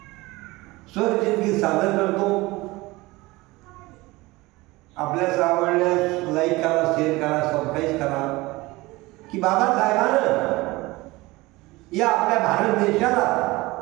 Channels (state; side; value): quieter; left; 21.1 dB